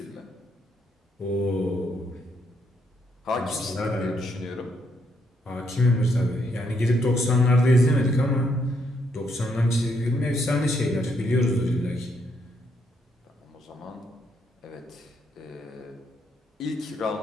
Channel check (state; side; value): normal; both; correlation 0.75